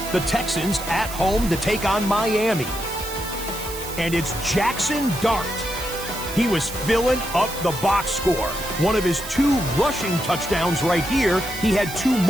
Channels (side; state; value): right; noise; hiss, 10 dB below the sound